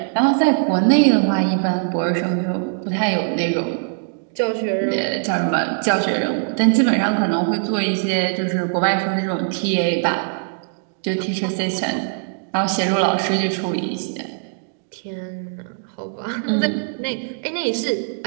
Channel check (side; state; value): left; silent; digital silence